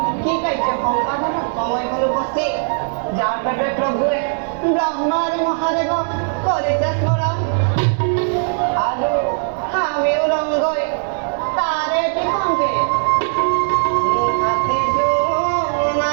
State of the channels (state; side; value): silent; left; 67 dB below the other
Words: কি কার্য সম্পাদন সময় হল উপস্থিত যার পেটে প্রভুয়ে ব্রহ্মার মহাদেব করেছে স্মরণ আলু আমিও রঙ্গই তারে টিকঙ্কে